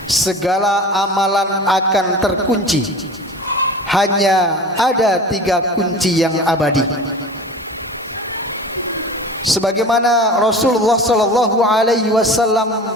segala amalan akan terkunci. Hanya ada 3 kunci yang abadi. Sebagaimana Rasulullah sallallahu alaihi wasallam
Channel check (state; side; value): normal; both; correlation 0.36